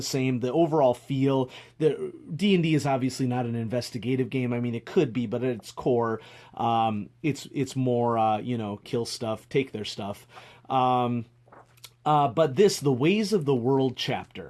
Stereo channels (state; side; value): identical; both; correlation 1.00